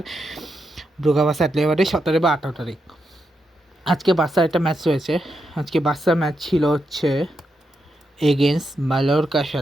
Brugge versus Atletico Madrid 17 বা 18 তারিখ। আজকে বার্সার একটা ম্যাচ রয়েছে। আজকে বার্সার ম্যাচ ছিল হচ্ছে এগেনস্ট মালোরকার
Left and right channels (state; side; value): normal; both; correlation 0.84